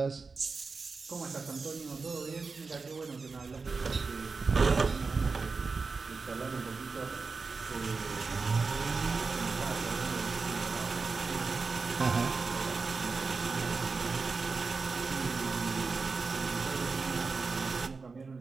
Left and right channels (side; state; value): left; quieter; 4.4 dB